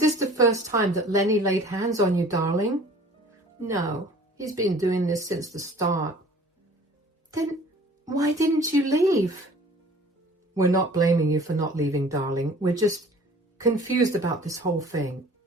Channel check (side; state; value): both; normal; correlation 0.49